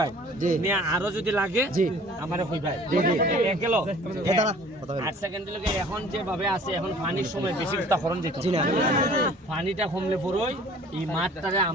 জি। নিয়ে আরো যদি লাগে জি। আমারে কইবাই জি, জি। গেল দাঁড়া, কথা বলি। 8 সেকেন্ড লগে এখন যেভাবে আছে এখন পানির সময় বেশি কথা করন যেত জি না। পানিটা কমলে পড়ই এই মাঠটারে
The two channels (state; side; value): normal; both; correlation 0.50